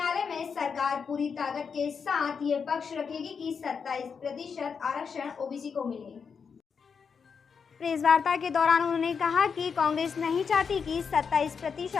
में सरकार पूरी ताकत के साथ ये पक्ष रखेगी कि 27% आरक्षण ओबीसी को मिले। प्रेस वार्ता के दौरान उन्होंने कहा कि कांग्रेस नहीं चाहती कि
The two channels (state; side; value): quieter; right; 6.1 dB